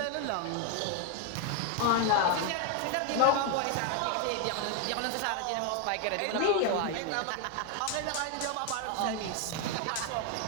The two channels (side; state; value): both; different; correlation 0.01